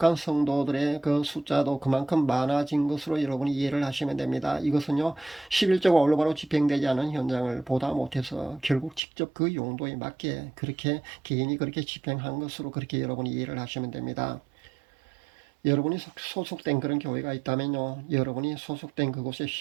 성도들의 그 숫자도 그만큼 많아진 것으로 여러분이 이해를 하시면 됩니다. 이것은요, 11조가 올바로 집행되지 않은 현장을 보다 못해서 결국 직접 그 용도에 맞게 그렇게 개인이 그렇게 집행한 것으로 그렇게 여러분이 이해를 하시면 됩니다. 여러분이 소속된 그런 교회가 있다면요, 여러분이 소속된 그곳에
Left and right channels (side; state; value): left; drops out; at 9.0 s